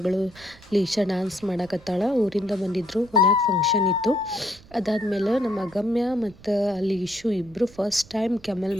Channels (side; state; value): right; noise; rumble, 23 dB below the sound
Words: ಲೀಶಾ ಡ್ಯಾನ್ಸ್ ಮಾಡಕತ್ತಾಳ. ಊರಿಂದ ಬಂದಿದ್ದರು, ಮನ್ಯಾಗ ಫಂಕ್ಷನ್ ಇತ್ತು. ಅದಾದಮೇಲೆ ನಮ್ಮ ಅಗಮ್ಯ ಮತ್ತು ಲೀಶು ಇಬ್ಬರು ಫಸ್ಟ್ ಟೈಮ್ ಕೆಮಲ್